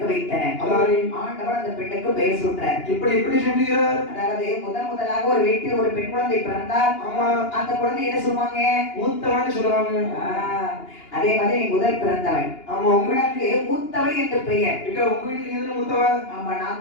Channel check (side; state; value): right; late; 2.9 ms